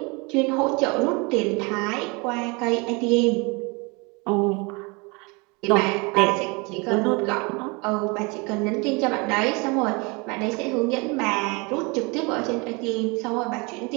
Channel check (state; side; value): quieter; left; 28.6 dB